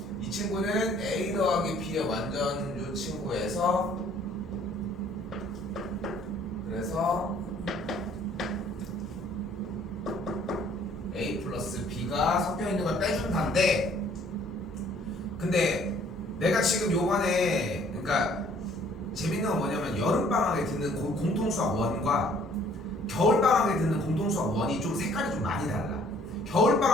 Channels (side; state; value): both; normal; correlation 0.59